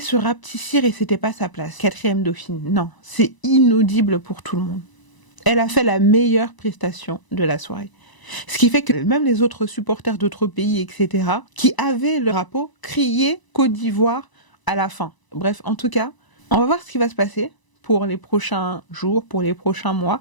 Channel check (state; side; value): late; right; 1.0 ms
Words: rapetissir et c'était pas sa place. 4e dauphine. Non, c'est inaudible pour tout le monde. Elle a fait la meilleure prestation de la soirée. Ce qui fait que même les autres supporters d'autres pays, etc., qui avaient le drapeau, criaient Côte d'Ivoire à la fin. Bref, en tout cas, on va voir ce qui va se passer pour les prochains jours, pour les prochains mois.